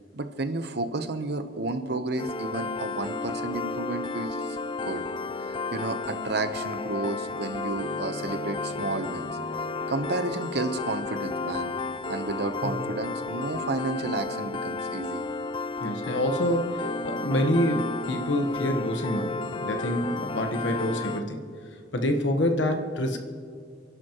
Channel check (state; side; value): normal; both; correlation 0.33